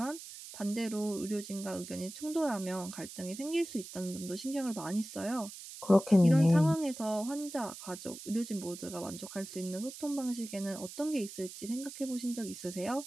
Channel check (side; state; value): right; noise; hiss, 12 dB below the sound